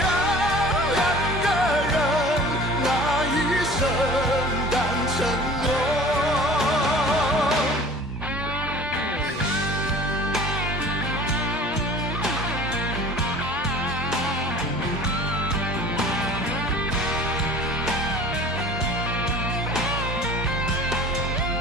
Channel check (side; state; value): both; normal; correlation 0.45